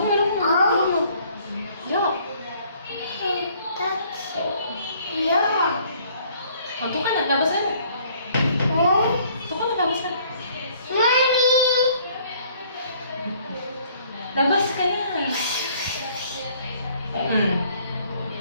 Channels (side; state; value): both; inverted; correlation -0.61